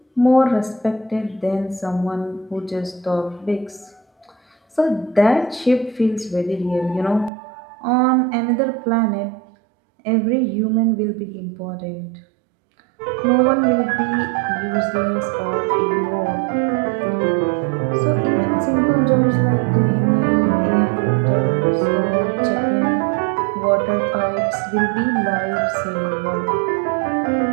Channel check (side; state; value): left; drops out; at 7.3 s